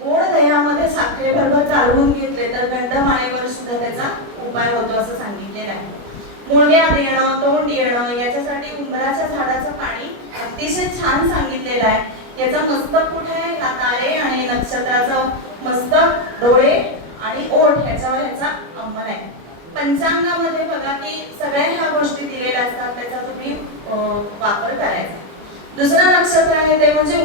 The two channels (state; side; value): late; left; 25 ms